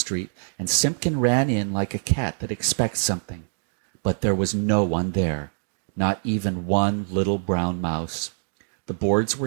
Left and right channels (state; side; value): silent; left; digital silence